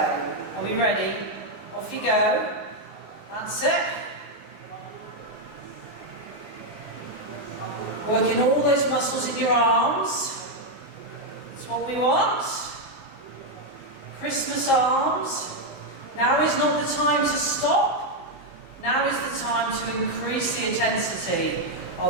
Are we ready? Off you go. That's it. Working all those muscles in your arms. That's what we want. Christmas arms. Now is not the time to stop. Now is the time to increase the intensity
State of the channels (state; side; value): late; right; 19 ms